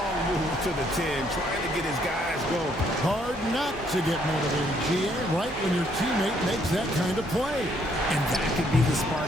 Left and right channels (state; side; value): normal; both; correlation 0.69